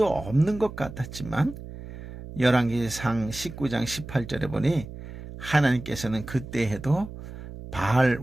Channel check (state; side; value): noise; right; hum, 12 dB below the sound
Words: 없는 것 같았지만 열왕기상 19장 18절에 보니 하나님께서는 그때 해도 바알